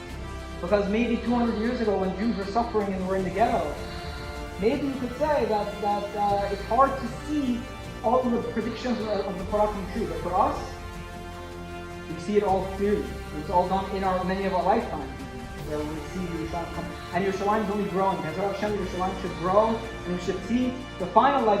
Because maybe 200 years ago, when Jews were suffering and were in the ghetto, maybe you could say that it's hard to see all of the predictions of the Torah come true. But for us, we see it all clearly. It's all done in many of our lifetimes, where we see Yerushalayim come. And Yerushalayim is only growing. As Hashem, Yerushalayim should grow, and we should see the final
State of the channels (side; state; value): both; identical; correlation 1.00